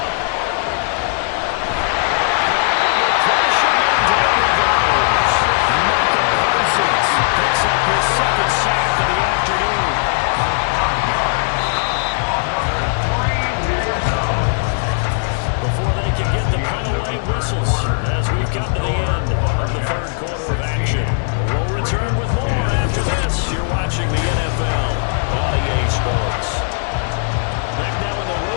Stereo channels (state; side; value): silent; right; digital silence